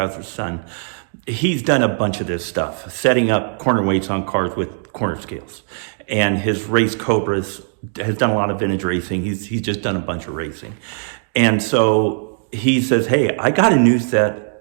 son. He's done a bunch of this stuff, setting up corner weights on cars with corner scales. And his race Cobras has done a lot of vintage racing. He's just done a bunch of racing. And so he says, hey, I got a new set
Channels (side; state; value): left; silent; digital silence